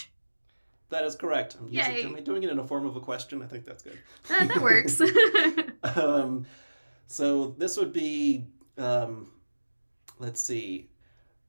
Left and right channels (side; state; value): both; inverted; correlation -1.00